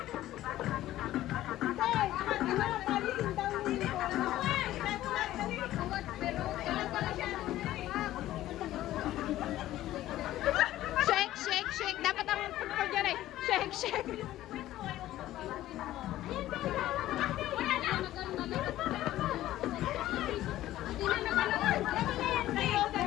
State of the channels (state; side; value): quieter; right; 14.4 dB